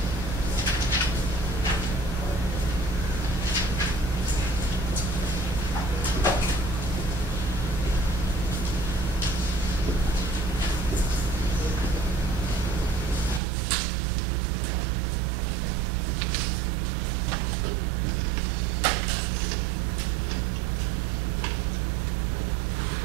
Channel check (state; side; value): drops out; left; at 13.4 s